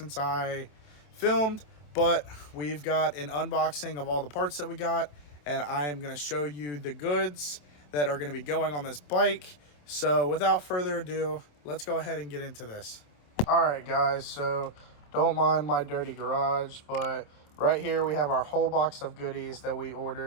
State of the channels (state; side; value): late; right; 27 ms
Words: I filmed, but we've got an unboxing of all the parts that we got, and I am going to show you the goods that are going to be going on this bike. So without further ado, let's go ahead and get into this. All right, guys, so don't mind my dirty garage, but right here we have our whole box of goodies that we